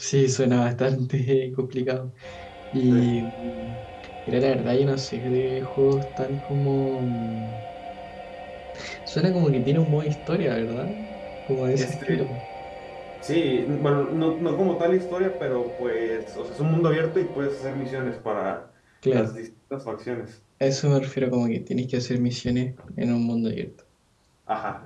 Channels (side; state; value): both; identical; correlation 1.00